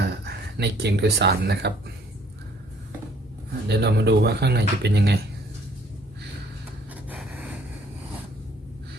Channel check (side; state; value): both; normal; correlation 0.61